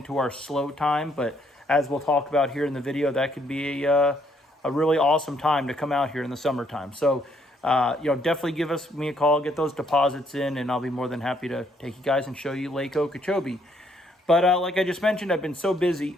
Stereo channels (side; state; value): both; normal; correlation 0.69